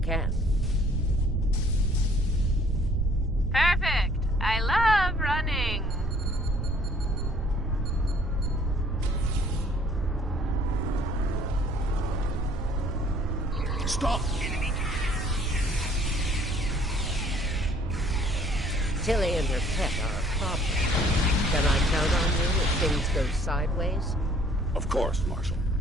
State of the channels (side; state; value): both; normal; correlation 0.58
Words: Perfect. I love running. Stop! Tilly and her pet are a problem. Can I count on you if things go sideways? Of course, Marshal.